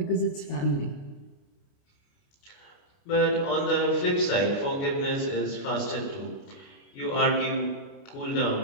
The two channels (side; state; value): right; late; 29 ms